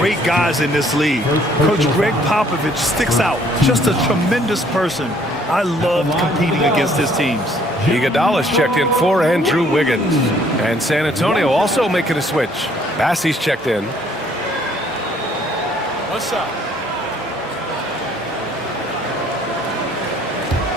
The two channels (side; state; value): both; normal; correlation 0.62